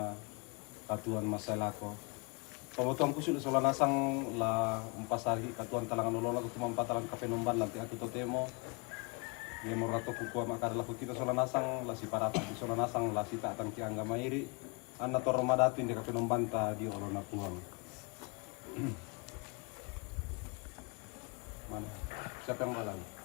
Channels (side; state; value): right; quieter; 31.4 dB